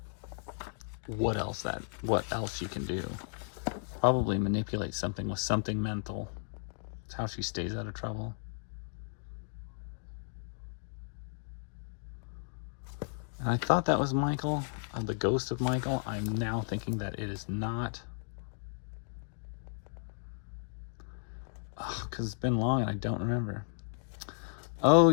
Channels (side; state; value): right; silent; digital silence